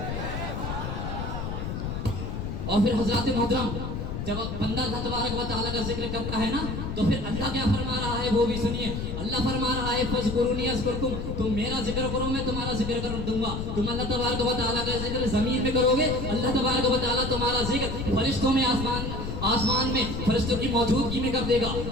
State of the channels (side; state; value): left; noise; rumble, 4 dB below the sound